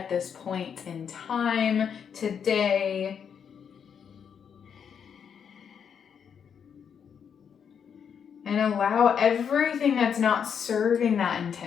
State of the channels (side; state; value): right; quieter; 7.5 dB